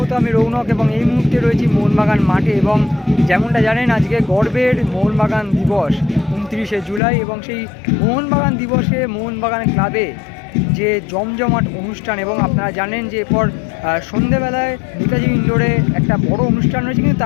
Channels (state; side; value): drops out; right; at 7.0 s